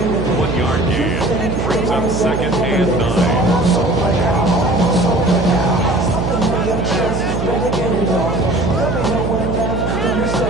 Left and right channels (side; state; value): right; noise; hum, 3 dB below the sound